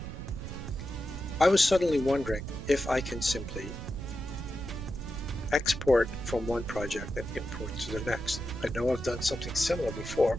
I was suddenly wondering if I can simply export from one project and import to the next. I know I've done something similar before,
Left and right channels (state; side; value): noise; right; rumble, 8 dB below the sound